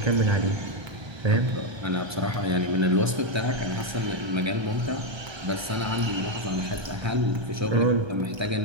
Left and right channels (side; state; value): left; late; 1.3 ms